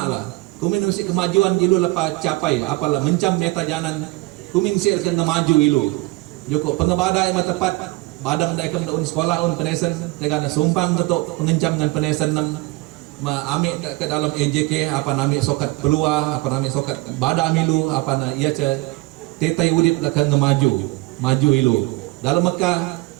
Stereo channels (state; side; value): quieter; left; 21.8 dB